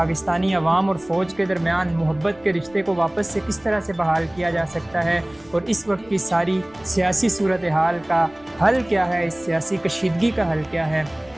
عوام اور فوج کے درمیان محبت کے رشتے کو واپس سے کس طرح سے بحال کیا جا سکتا ہے، اور اس وقت کی ساری سیاسی صورتحال کا حل کیا ہے، اس سیاسی کشیدگی کا حل کیا ہے۔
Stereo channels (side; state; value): left; noise; rumble, 27 dB below the sound